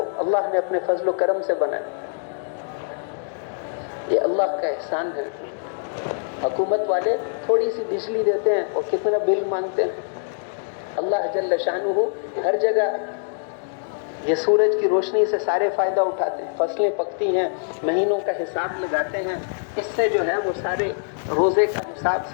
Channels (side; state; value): right; silent; digital silence